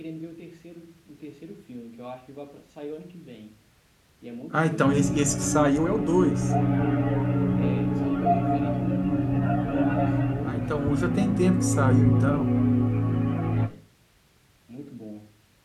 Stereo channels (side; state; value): both; identical; correlation 1.00